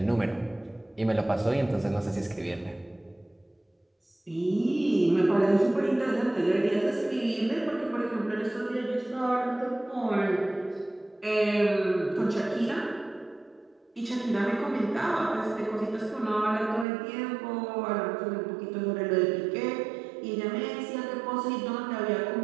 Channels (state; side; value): drops out; left; at 16.9 s